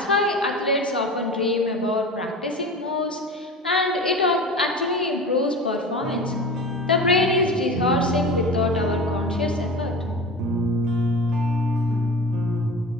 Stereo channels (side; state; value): both; normal; correlation 0.32